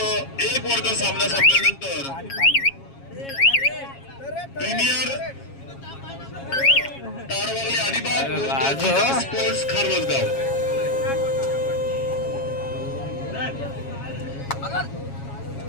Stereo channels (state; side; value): late; right; 7.3 ms